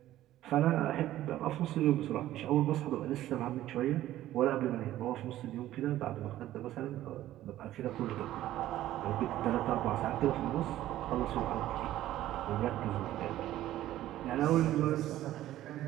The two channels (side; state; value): left; quieter; 13.9 dB